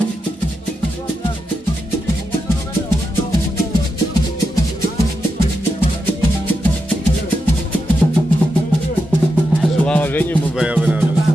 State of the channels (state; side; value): normal; both; correlation 0.87